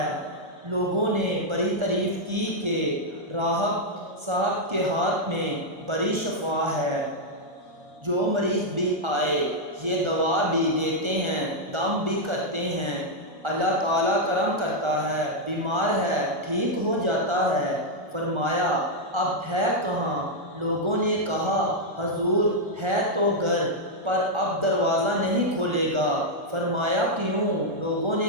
لوگوں نے بڑی تعریف کی کہ راہب صاحب کے ہاتھ میں بڑی شفا ہے، جو مریض بھی آئے یہ دوا بھی دیتے ہیں، دم بھی کرتے ہیں، اللہ تعالیٰ کرم کرتا ہے، بیمار ہے ٹھیک ہو جاتا ہے۔ فرمایا اب ہے کہاں؟ لوگوں نے کہا حضور ہے تو گھر پر اب دروازہ نہیں کھولے گا۔ فرمایا کیوں؟ لوگوں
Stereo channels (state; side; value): late; left; 1.3 ms